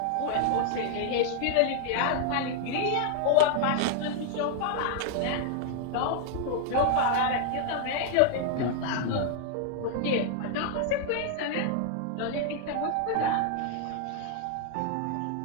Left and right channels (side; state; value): both; different; correlation 0.00